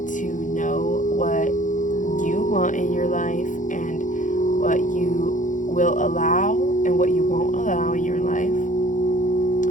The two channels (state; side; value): late; right; 0.37 ms